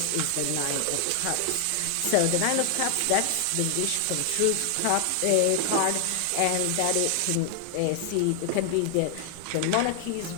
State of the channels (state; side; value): different; both; correlation 0.00